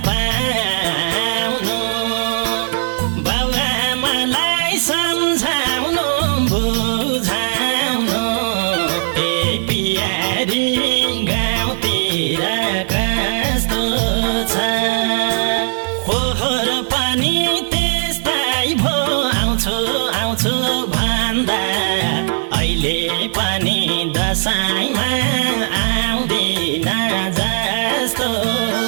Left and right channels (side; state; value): left; silent; 59 dB below the other